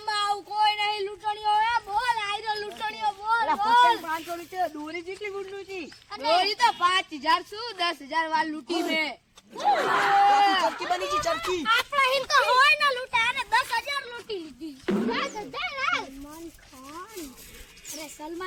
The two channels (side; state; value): both; identical; correlation 1.00